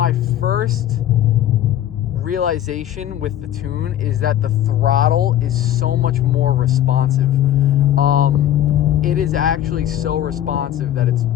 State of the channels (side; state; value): right; quieter; 11.7 dB